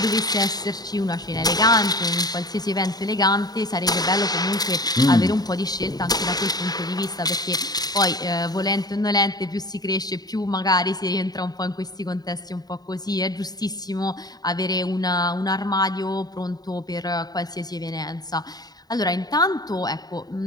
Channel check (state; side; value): late; right; 0.19 ms